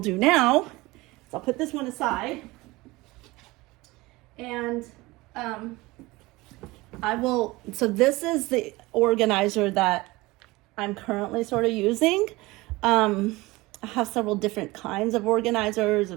now is I'll put this one aside, and so this is the organizer that I'm currently sort of using. I have several different kinds of organizers,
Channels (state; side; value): quieter; left; 21.3 dB